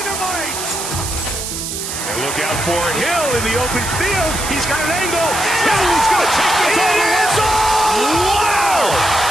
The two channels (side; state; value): right; noise; hiss, 5 dB below the sound